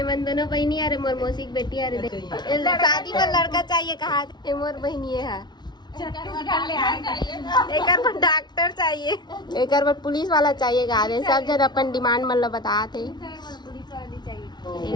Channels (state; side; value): late; right; 0.20 ms